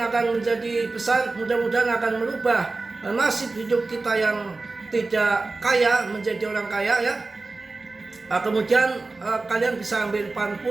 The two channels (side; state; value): left; quieter; 3.5 dB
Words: akan menjadi besar, mudah-mudahan akan merubah nasib hidup kita yang tidak kaya menjadi orang kaya ya. Kemudian kalian bisa ambil pan